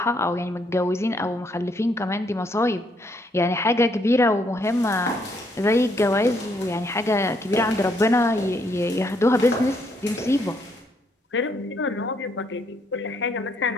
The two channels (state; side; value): normal; both; correlation 0.72